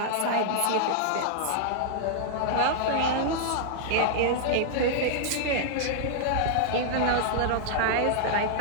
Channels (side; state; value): both; different; correlation -0.01